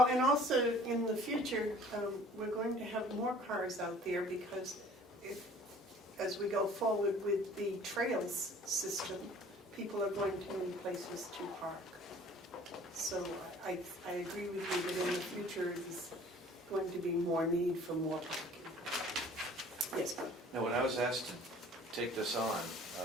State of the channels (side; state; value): both; normal; correlation 0.51